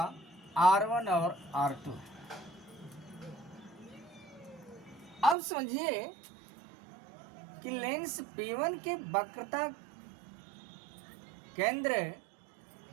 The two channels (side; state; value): left; drops out; at 5.4 s